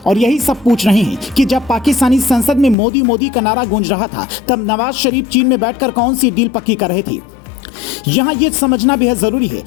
और यही सब पूछ रहे हैं कि जब पाकिस्तानी संसद में मोदी मोदी का नारा गूंज रहा था तब नवाज शरीफ चीन में बैठकर कौन सी डील पक्की कर रहे थे। यहाँ ये समझना बेहद जरूरी है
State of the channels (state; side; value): drops out; right; at 2.8 s